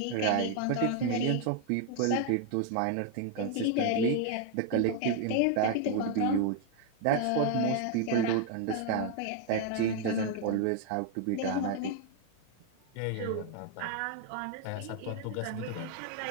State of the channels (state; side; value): different; both; correlation 0.01